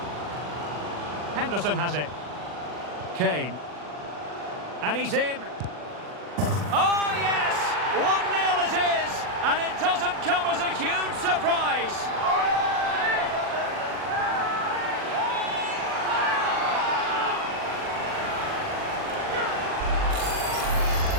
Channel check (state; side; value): late; left; 40 ms